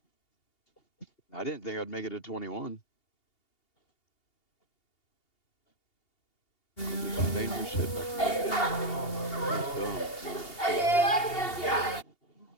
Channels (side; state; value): right; late; 2.8 ms